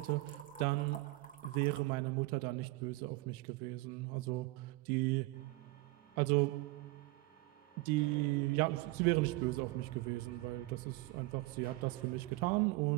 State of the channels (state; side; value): quieter; left; 20.9 dB